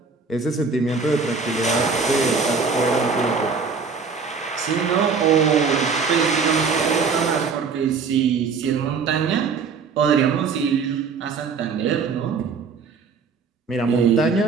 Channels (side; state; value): left; quieter; 5.2 dB